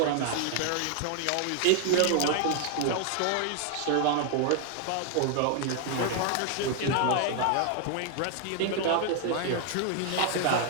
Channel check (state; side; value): different; both; correlation 0.00